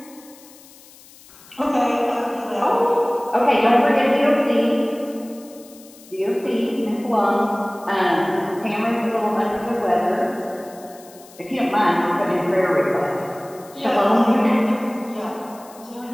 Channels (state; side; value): noise; left; hiss, 23 dB below the sound